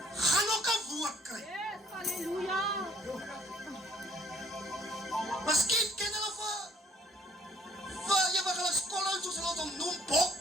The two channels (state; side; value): normal; both; correlation 0.60